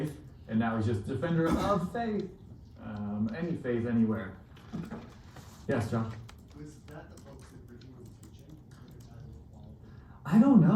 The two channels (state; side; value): identical; both; correlation 1.00